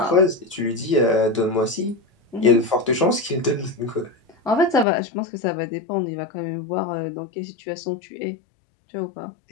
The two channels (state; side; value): drops out; right; at 4.9 s